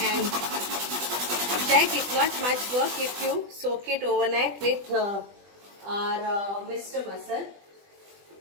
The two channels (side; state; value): left; late; 20 ms